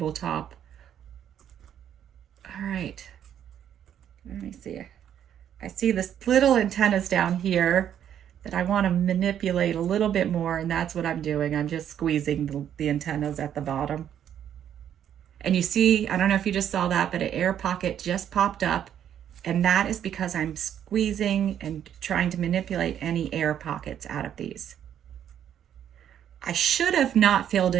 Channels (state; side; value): quieter; left; 9.8 dB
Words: All right, let me see. I see this little antennas down here that I want to manipulate a little bit more, and that's what I'm doing. I'm just squeezing the antennas at the bottom. And you see, I don't know if you just saw that, but an air pocket just popped up, and that is because I'm squeezing and trying to manipulate any air pockets out of these. I should have not filled